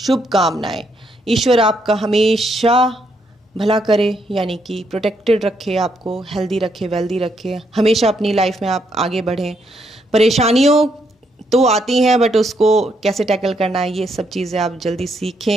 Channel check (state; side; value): normal; both; correlation 0.75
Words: ईश्वर आपका हमेशा भला करे, यानी कि प्रोटेक्टेड रखे, आपको हेल्दी रखे, वेल्दी रखे, हमेशा अपनी लाइफ में आप आगे बढ़ें। परेशानियों तो आती हैं बट उसको कैसे टैकल करना है, ये सब चीज़ें आप जल्दी